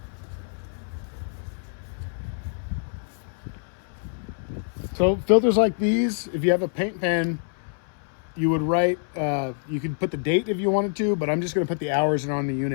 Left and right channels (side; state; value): right; silent; 61 dB below the other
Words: So filters like these, if you have a paint pen, you would write, you could put the date if you wanted to, but I'm just gonna put the hours on the